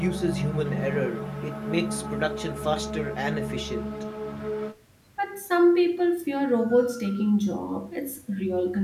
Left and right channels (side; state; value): both; identical; correlation 1.00